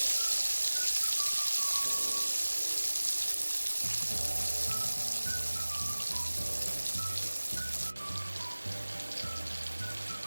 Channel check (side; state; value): both; inverted; correlation -1.00